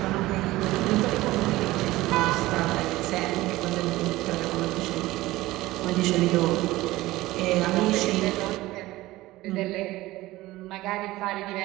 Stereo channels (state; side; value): quieter; left; 18.0 dB